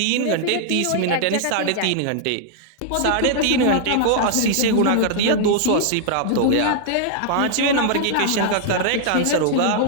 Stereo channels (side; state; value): both; different; correlation -0.01